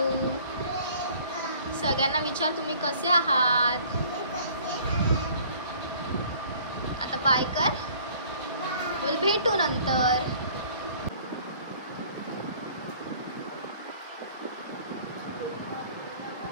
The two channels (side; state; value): both; inverted; correlation -0.54